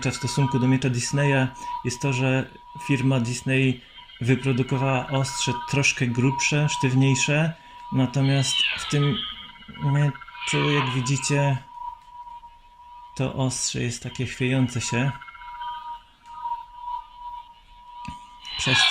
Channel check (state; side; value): identical; both; correlation 1.00